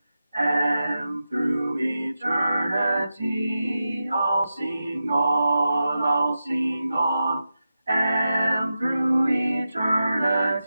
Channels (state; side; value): inverted; both; correlation -0.91